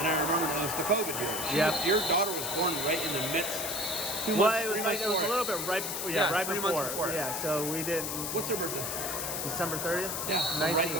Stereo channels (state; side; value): noise; left; hiss, 3 dB below the sound